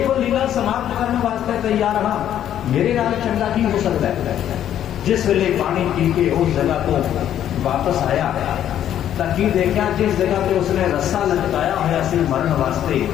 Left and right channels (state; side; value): quieter; right; 10.8 dB